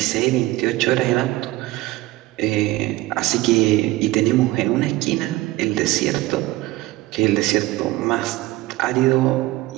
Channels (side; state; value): left; quieter; 18.4 dB